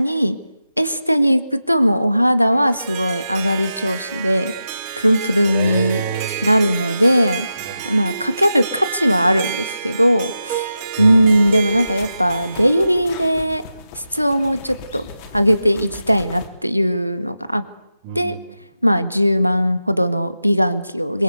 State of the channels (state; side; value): inverted; both; correlation -0.90